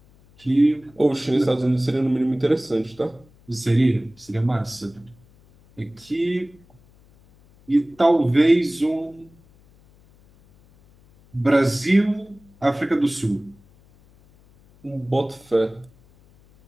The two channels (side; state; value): left; noise; hum, 29 dB below the sound